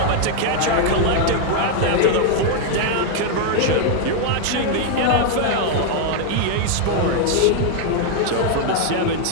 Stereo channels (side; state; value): both; different; correlation 0.00